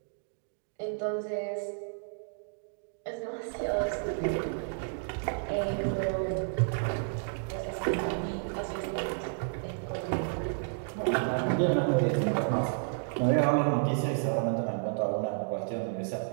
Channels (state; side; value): silent; left; digital silence